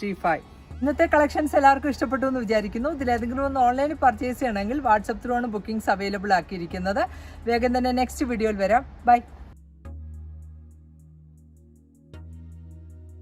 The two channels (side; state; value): both; identical; correlation 1.00